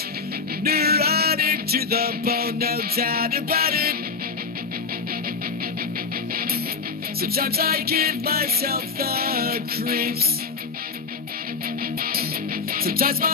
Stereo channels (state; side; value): quieter; right; 4.9 dB